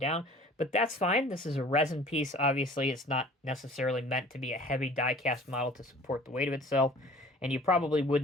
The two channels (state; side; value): normal; both; correlation 0.48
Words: But that's fine. This is a resin piece. Obviously, it's not necessarily meant to be a heavy die-cast model to support the weight of itself. And you probably